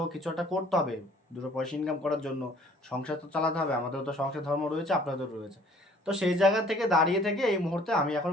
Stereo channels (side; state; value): both; normal; correlation 0.56